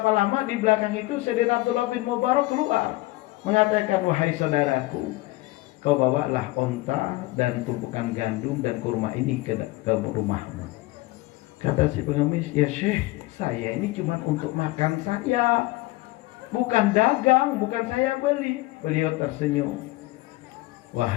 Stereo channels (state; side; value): quieter; right; 19.8 dB